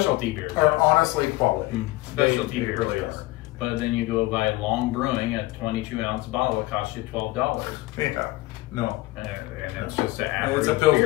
beers are honestly quality. Specialty beers really are. are. But then you go buy Long Brewing, a 22-ounce bottle. It costs you $12. Yeah. No. And it's just an average It's a Pilsner.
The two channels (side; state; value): right; quieter; 19.4 dB